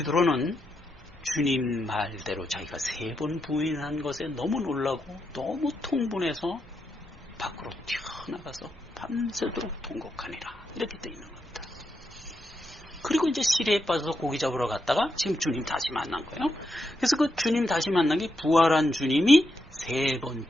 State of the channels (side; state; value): both; normal; correlation 0.83